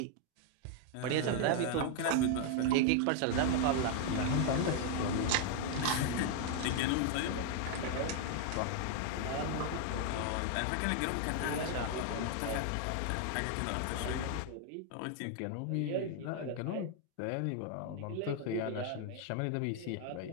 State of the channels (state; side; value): different; both; correlation 0.00